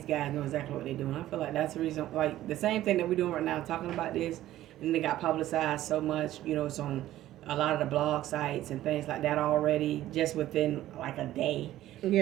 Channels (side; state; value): left; quieter; 14.1 dB